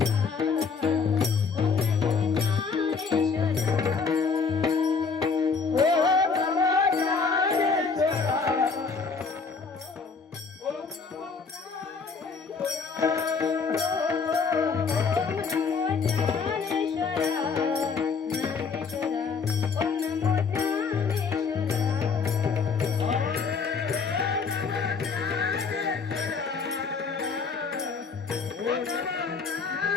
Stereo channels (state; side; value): quieter; right; 5.2 dB